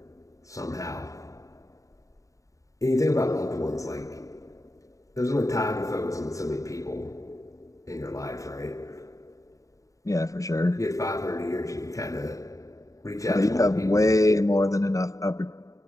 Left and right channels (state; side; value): late; right; 0.16 ms